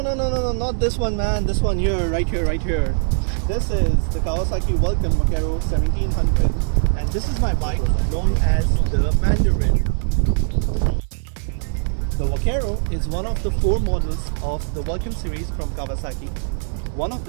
this one, man. This one here, right here. This is the Kawasaki Vulcan Vaquero 1700 and this is my bike known as the Mandarin. The Vaquero is one of the 4 models of the Vulcan series from Kawasaki. One of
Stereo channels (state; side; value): silent; left; digital silence